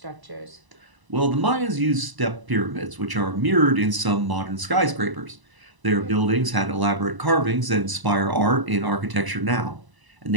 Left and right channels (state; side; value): late; left; 1.0 ms